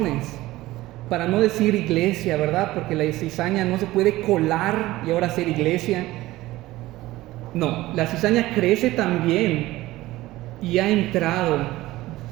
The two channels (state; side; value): quieter; left; 17.5 dB